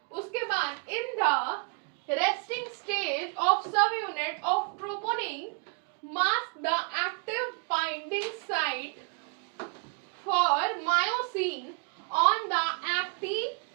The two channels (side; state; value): left; quieter; 37.1 dB